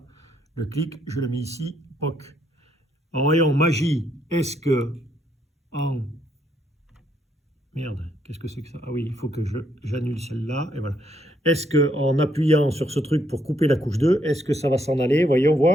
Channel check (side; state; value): both; normal; correlation 0.73